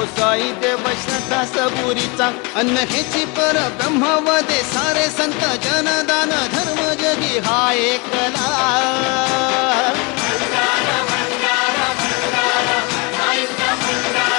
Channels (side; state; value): right; quieter; 29.4 dB